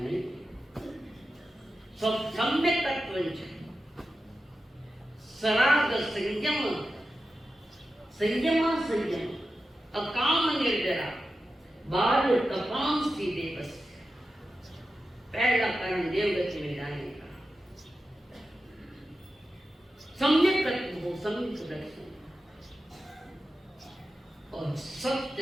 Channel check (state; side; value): normal; both; correlation 0.91